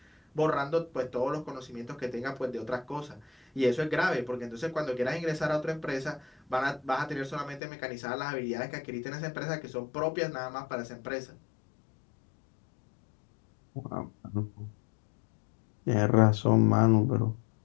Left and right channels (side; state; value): right; drops out; at 7.6 s